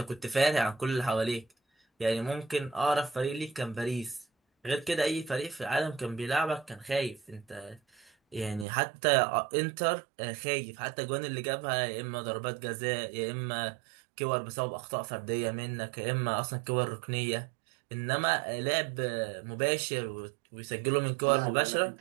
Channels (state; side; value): drops out; left; at 8.7 s